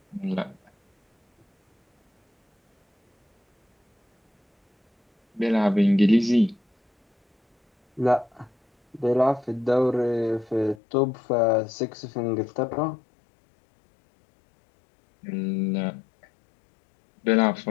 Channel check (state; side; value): drops out; right; at 10.8 s